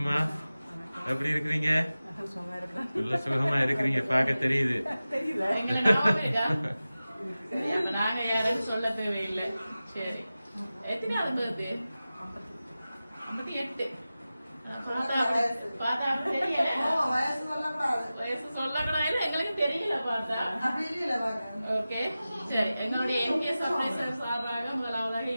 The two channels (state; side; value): inverted; both; correlation -0.95